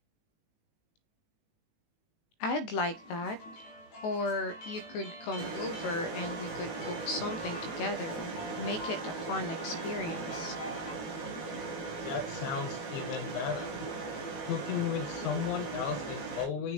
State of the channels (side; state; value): right; late; 18 ms